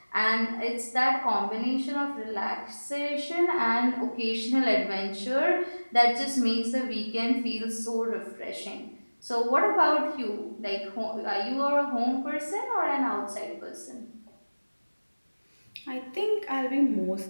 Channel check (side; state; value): both; inverted; correlation -1.00